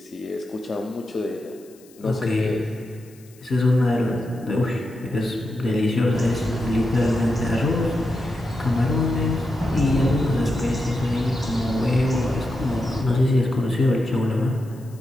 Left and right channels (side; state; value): left; noise; hiss, 27 dB below the sound